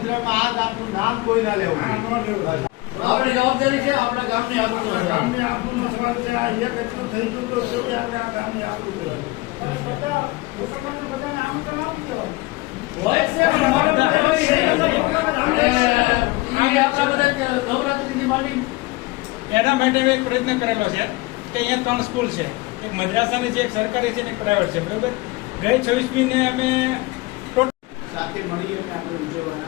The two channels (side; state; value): right; quieter; 21.9 dB